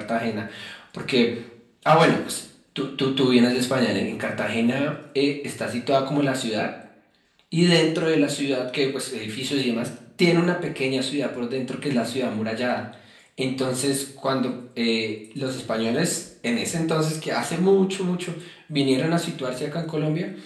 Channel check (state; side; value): identical; both; correlation 1.00